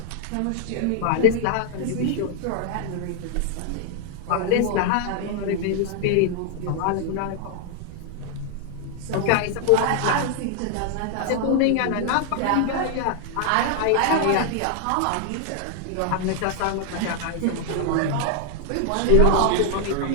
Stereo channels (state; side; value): different; both; correlation 0.00